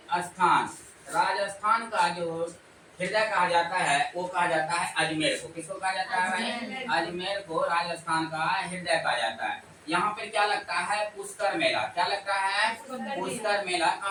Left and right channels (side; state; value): both; identical; correlation 1.00